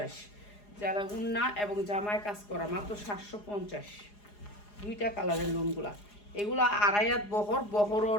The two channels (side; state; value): right; late; 4.8 ms